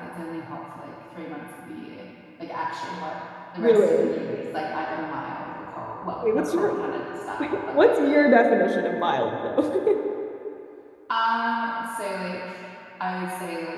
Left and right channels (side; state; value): both; identical; correlation 1.00